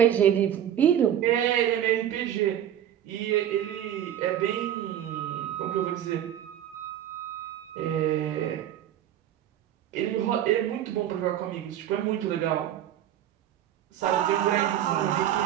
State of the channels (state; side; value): quieter; left; 10.7 dB